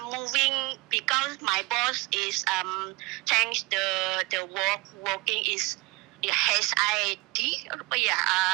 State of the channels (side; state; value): left; quieter; 23.6 dB